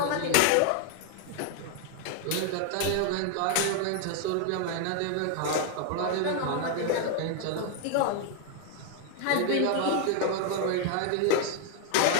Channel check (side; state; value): both; different; correlation 0.00